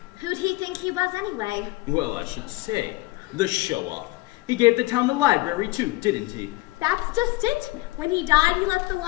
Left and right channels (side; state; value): right; quieter; 20.6 dB